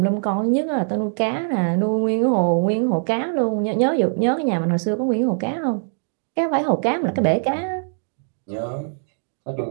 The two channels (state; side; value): silent; left; 64 dB below the other